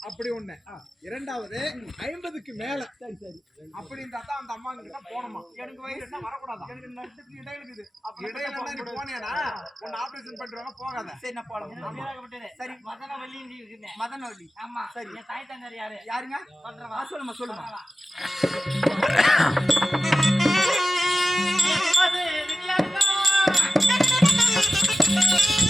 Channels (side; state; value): both; normal; correlation 0.94